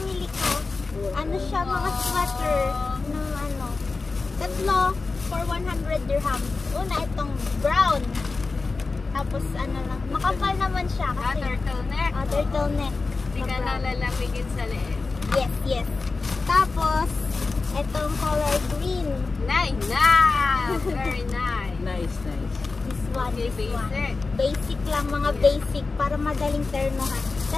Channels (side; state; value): right; quieter; 4.0 dB